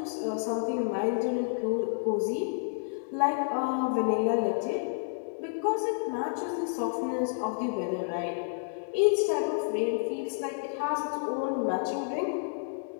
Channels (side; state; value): right; silent; digital silence